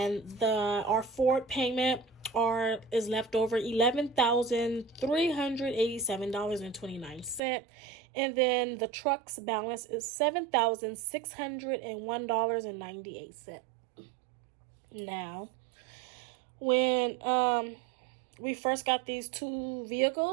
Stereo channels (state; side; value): drops out; left; at 7.4 s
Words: our forward payment is left over $11,387.29, and then the truck's balance is $7,601.98. Now, when we first got these two